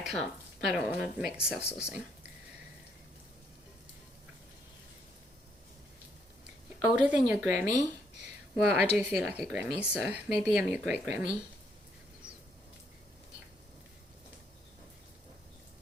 want to make self-saucing. Older than your Grammy? Well, I do feel like a Grammy, so maybe I'm your great Grammy.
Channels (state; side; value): normal; both; correlation 0.72